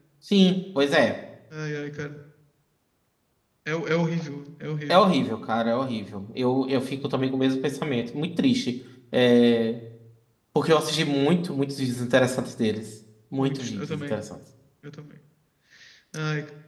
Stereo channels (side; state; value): both; identical; correlation 1.00